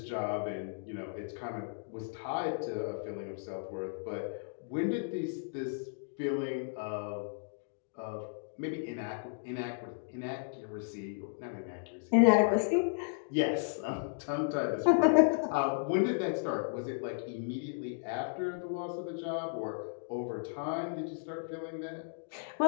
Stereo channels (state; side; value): silent; right; digital silence